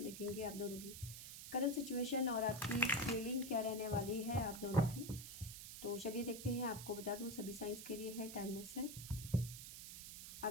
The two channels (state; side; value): noise; right; hiss, 10 dB below the sound